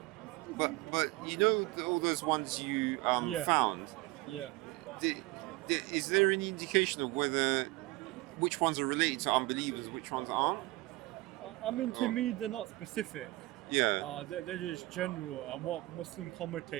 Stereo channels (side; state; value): left; quieter; 20.7 dB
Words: But you know all those ones you Yeah. found. Yeah. Is there any indication of whether which ones are related to unbelievers, which ones aren't? I mean, to me, they're not specific. Yeah. They're just general. And what Muslim